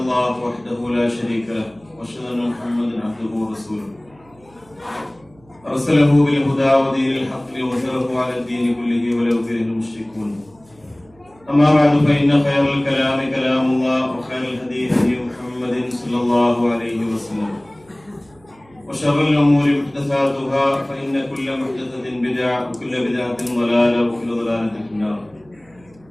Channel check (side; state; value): right; noise; hum, 29 dB below the sound